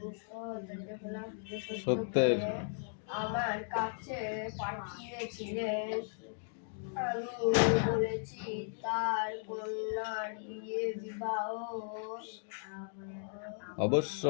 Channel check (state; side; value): silent; right; digital silence